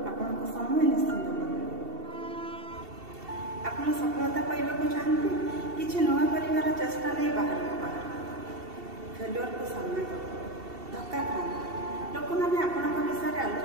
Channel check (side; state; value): left; late; 2.7 ms